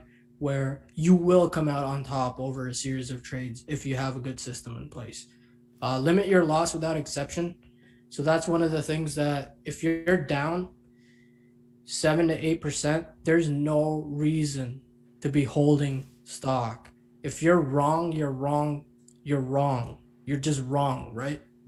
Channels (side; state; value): both; identical; correlation 1.00